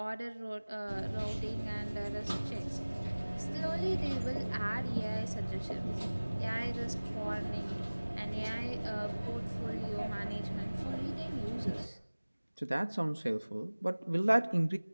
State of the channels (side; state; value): both; inverted; correlation -1.00